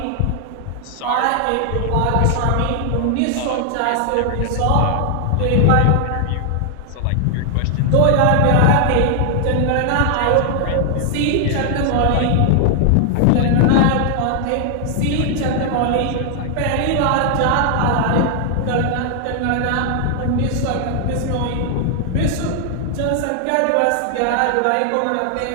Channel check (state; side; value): different; both; correlation 0.00